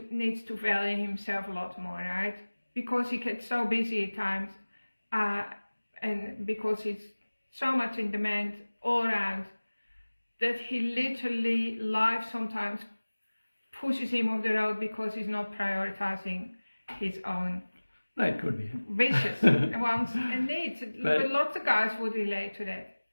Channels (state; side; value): inverted; both; correlation -1.00